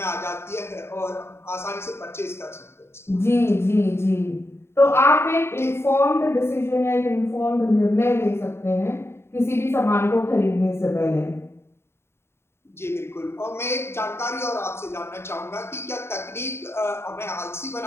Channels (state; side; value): late; right; 0.12 ms